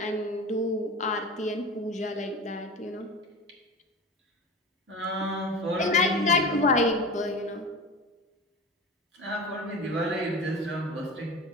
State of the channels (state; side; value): normal; both; correlation 0.31